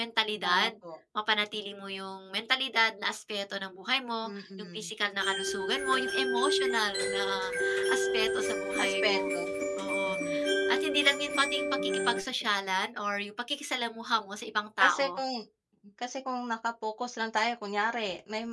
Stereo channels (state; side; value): identical; both; correlation 1.00